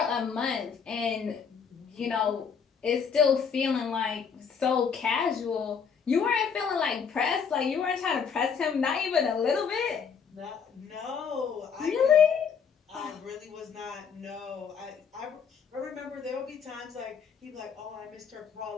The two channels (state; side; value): quieter; right; 6.5 dB